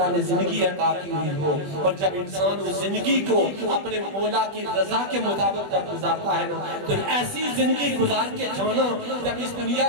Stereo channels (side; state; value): left; late; 20 ms